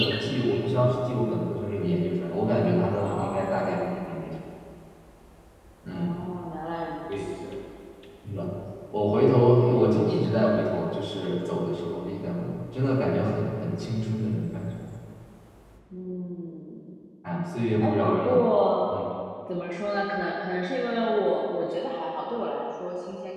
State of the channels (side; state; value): both; identical; correlation 1.00